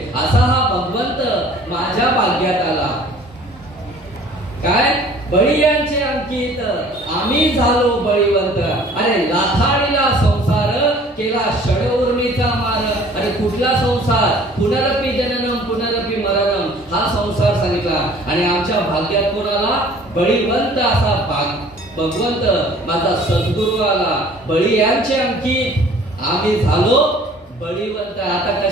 असा हा भगवंत माझ्या भाग्यात आला. काय बळीयांचे अंकित, आम्ही झालो बळीवंत. अरे लाथाडीला संसार केला षडऊर्मीचा मार. अरे कुठला संसार? पुनरपी जननम पुनरपी मरणम, हा संसार सांगितला. आणि आमच्या भाग्यात कोणाला? बळीवंत असा भगवंत माझा सद्गुरू आला. बळीयांचे अंकित, आम्ही झालो बळीवंत. आता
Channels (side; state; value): both; normal; correlation 0.52